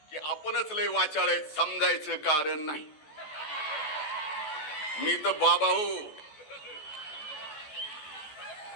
की आपणच लय वाचाळ आहेत समजायचं कारण नाही. मी तर बाबा हो.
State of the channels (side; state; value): right; late; 14 ms